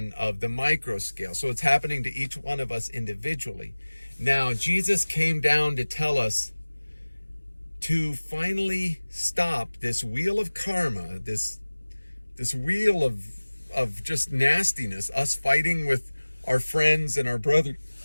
of the micro scale. So it's happening to each one of us individually. Now, Jesus came down to tell us to finally stop this wheel of karma, this wheel of just nastiness, us fighting with our friends and our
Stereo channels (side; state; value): both; inverted; correlation -1.00